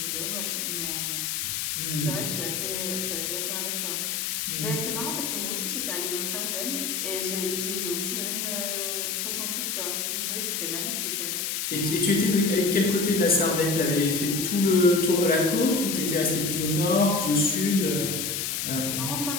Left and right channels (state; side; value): noise; left; hiss, 1 dB below the sound